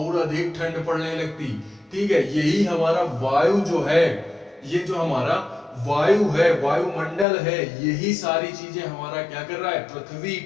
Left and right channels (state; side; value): drops out; right; at 7.2 s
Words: अधिक ठंड पड़ने लगती, ठीक है। यही हमारा वायु जो है, ये जो हमारा वायु है, वायुमंडल है, यही सारी चीजें हमारा क्या कर रहा है, पृथ्वी